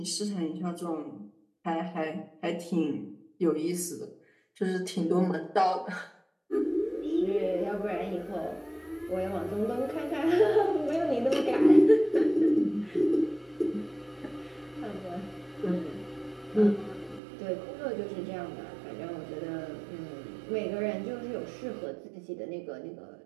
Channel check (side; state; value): left; drops out; at 17.2 s